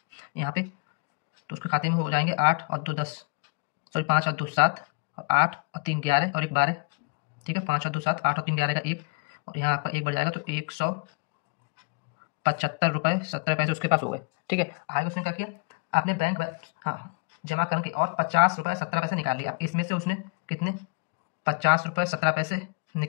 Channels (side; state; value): right; quieter; 28.7 dB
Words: यहाँ पे? तो उसके खाते में हो जाएंगे 8 और 2 10, सॉरी 5 और 2 7 और 8 और 3 11 और 1 12, ठीक है, 5 और 2 7, 8 और 3 11 का 1, और यहाँ आपका 1 बढ़ जाएगा तो 175 रुपये 70 पैसे उसके पास हो गए, ठीक है। आगे उसने क्या किया, आपने बैंक हाँ जमा करके और 50 रुपये 17 पैसे निकाल लिए। अब इसमें से उसने कितने 50 रुपये 17 पैसे